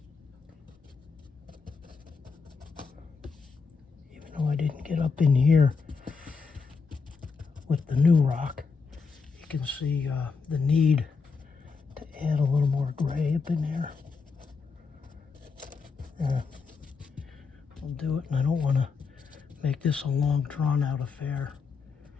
Even though I didn't get up in here with the new rock, you can see the need to add a little more gray up in there. I'll do it, and I don't want to make this a long drawn out affair.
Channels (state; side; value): quieter; right; 5.0 dB